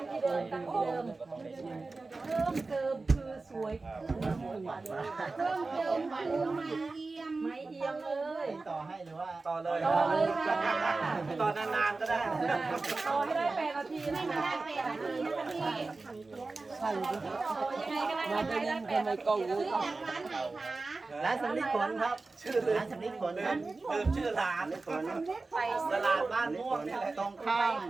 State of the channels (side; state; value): left; quieter; 3.6 dB